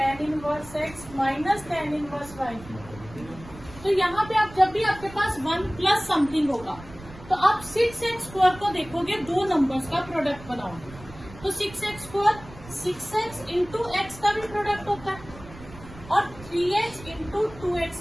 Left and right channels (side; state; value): right; noise; rumble, 17 dB below the sound